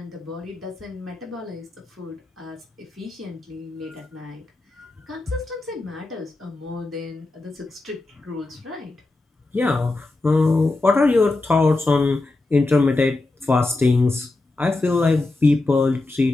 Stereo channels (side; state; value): right; quieter; 3.1 dB